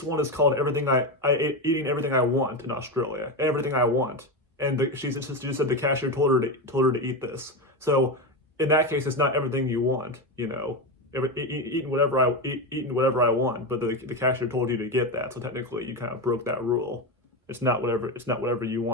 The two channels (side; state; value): both; normal; correlation 0.15